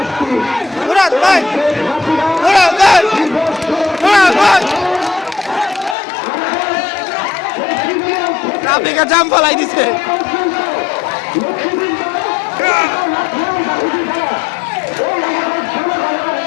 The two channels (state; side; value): drops out; right; at 6.0 s